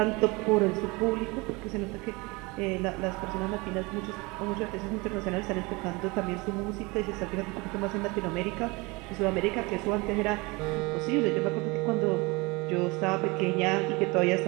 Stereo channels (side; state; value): left; quieter; 25.4 dB